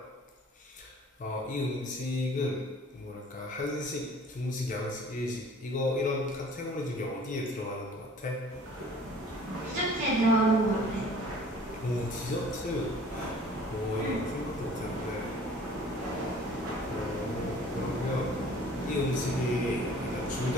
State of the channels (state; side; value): normal; both; correlation 0.51